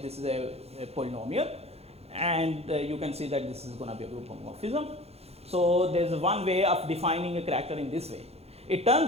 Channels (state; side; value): late; left; 0.30 ms